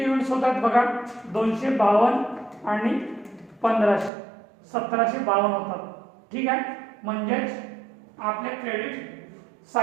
युनिट्स होतात बघा 252 आणि 1500 1752 होतात. ठीक आहे. म्हणजेच आपल्या क्रेडिट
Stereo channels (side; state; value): left; drops out; at 4.1 s